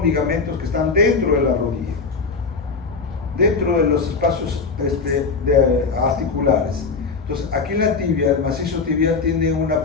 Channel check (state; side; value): quieter; right; 4.7 dB